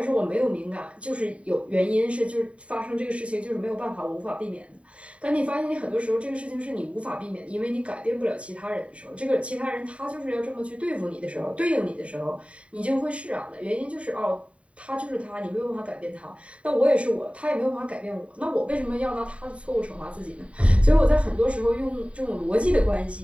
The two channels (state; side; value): late; left; 0.063 ms